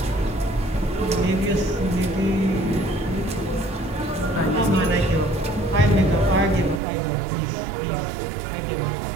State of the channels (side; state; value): left; drops out; at 6.8 s